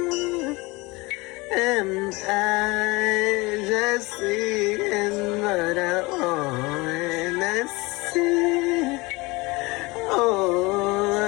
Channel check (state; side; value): quieter; right; 23.8 dB